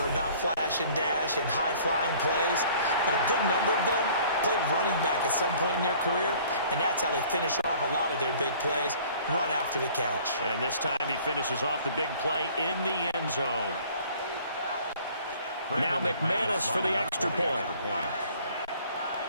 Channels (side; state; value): both; inverted; correlation -0.53